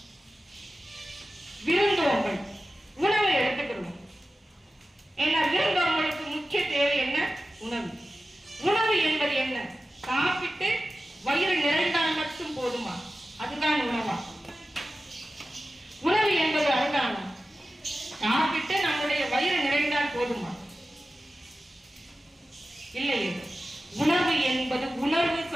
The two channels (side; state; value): both; normal; correlation 0.94